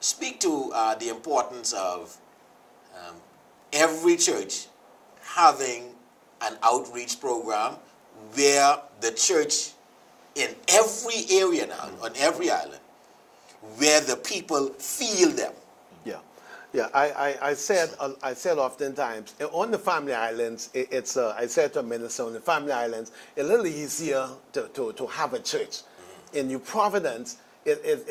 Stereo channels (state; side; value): identical; both; correlation 1.00